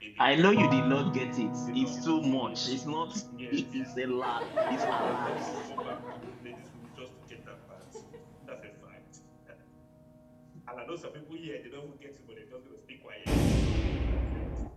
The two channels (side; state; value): both; identical; correlation 1.00